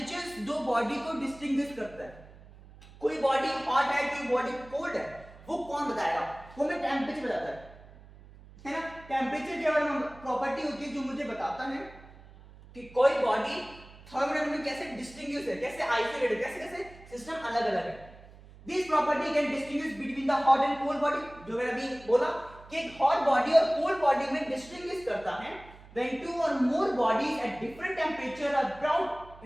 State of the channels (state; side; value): noise; right; hum, 21 dB below the sound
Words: दो बॉडी को डिस्टिंग्विश करता है। कोई बॉडी हॉट है, कोई बॉडी कोल्ड है, वो कौन बताएगा? वो हमें टेम्परेचर बताता है ना। टेम्परेचर के बारे में प्रॉपर्टी होती है जो मुझे बताता है कि कोई बॉडी थर्मोडायनामिक कैसे डिस्टिंग्विश है, कैसे आइसोलेट है, कैसे कैसे सिस्टम अलग अलग है। This property can distinguish between the hot and cold body. जो मैंने अभी बोला कि एक हॉट बॉडी और कोल्ड बॉडी में डिस्टिंग्विश करता है when two or more bodies at different temperature are brought